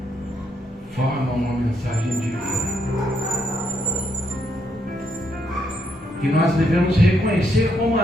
formam uma mensagem divina que nós devemos reconhecer como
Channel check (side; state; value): both; normal; correlation 0.76